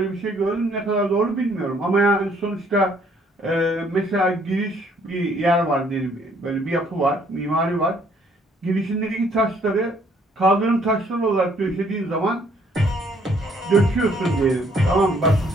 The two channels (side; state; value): both; normal; correlation 0.64